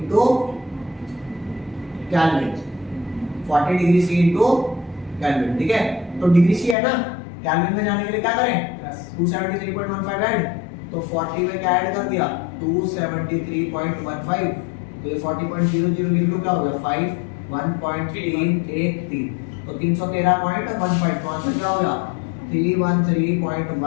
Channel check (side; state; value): right; drops out; at 6.8 s